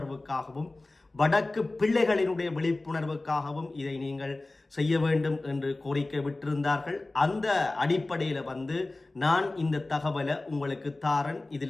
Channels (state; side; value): quieter; right; 3.0 dB